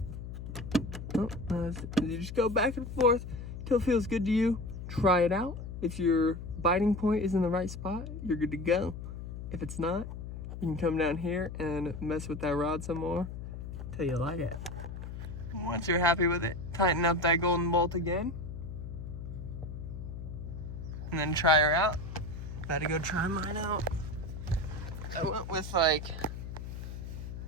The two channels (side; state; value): left; noise; hum, 8 dB below the sound